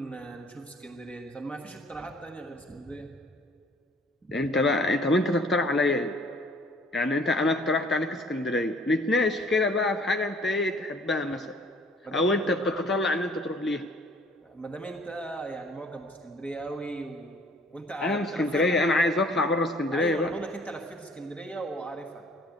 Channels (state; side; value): normal; both; correlation 0.55